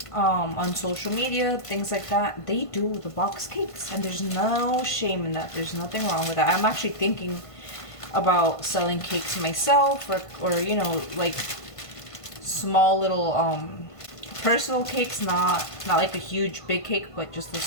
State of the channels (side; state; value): right; late; 1.5 ms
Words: on social media, things like that, they do the box cakes, and there's no shame in that. There's nothing wrong with that. I'm actually thinking about selling cakes myself, or you know, like small little personal cakes, not like a huge big cake, but just a